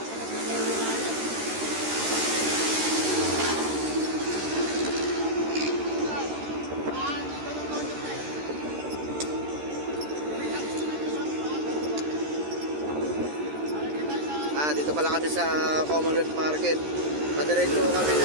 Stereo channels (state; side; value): late; left; 13 ms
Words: Dito pala kami sa Commonwealth Market. Padiretso kami